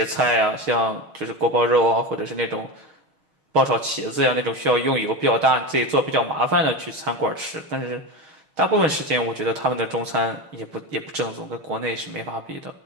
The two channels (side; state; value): left; late; 6.4 ms